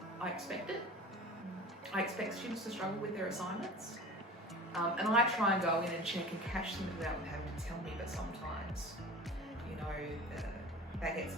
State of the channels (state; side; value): normal; both; correlation 0.38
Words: I expect it. I expect students to struggle with their assignments. And I try and go in and check and catch them without them having to tell me, but sometimes, that gets